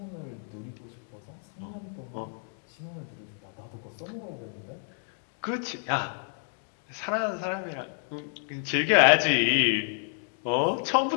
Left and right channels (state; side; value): silent; right; 58 dB below the other